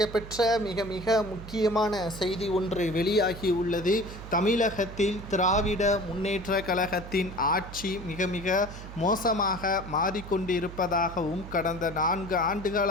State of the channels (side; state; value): right; noise; hum, 13 dB below the sound